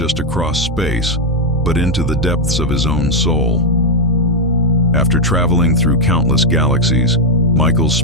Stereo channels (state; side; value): normal; both; correlation 0.01